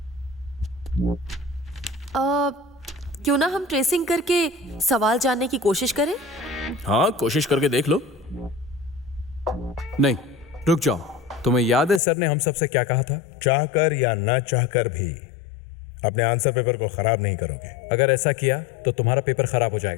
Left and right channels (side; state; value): right; drops out; at 12.0 s